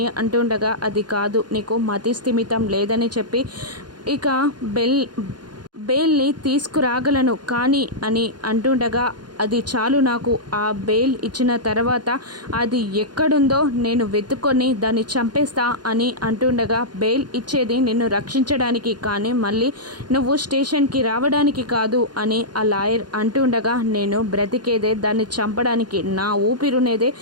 అంటుండగా అది కాదు, నీకు మతి స్థిమితం లేదని చెప్పి ఇక బెయిల్ని తీసుకురాగలను కానీ అని అంటుండగా అది చాలు నాకు, ఆ బెయిల్ ఇచ్చిన తర్వాత అది ఎక్కడుందో నేను వెతుక్కొని దాన్ని చంపేస్తా అని అంటుండగా బెయిల్ ఇచ్చేది నిన్ను రక్షించడానికి కానీ మళ్ళీ నువ్వు స్టేషన్కి రావడానికి కాదు అని ఆ లాయర్ అంటుండగా నేను బ్రతికేదే దాన్ని చంపడానికి, నా ఊపిరునేదే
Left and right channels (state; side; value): late; left; 0.70 ms